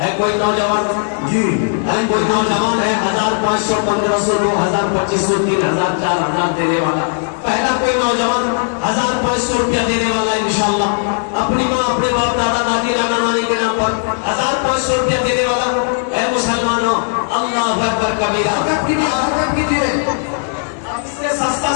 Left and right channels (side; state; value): right; silent; 69 dB below the other